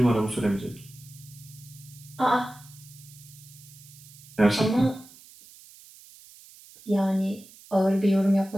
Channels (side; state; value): right; noise; hiss, 21 dB below the sound